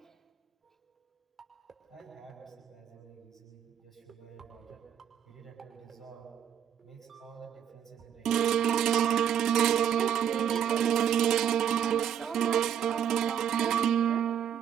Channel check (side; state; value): left; quieter; 9.1 dB